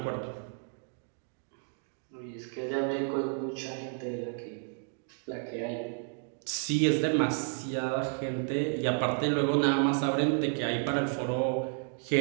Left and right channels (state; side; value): silent; left; 57 dB below the other